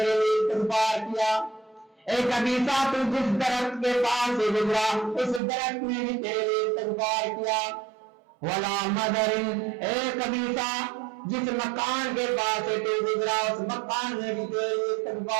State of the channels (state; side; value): drops out; left; at 5.4 s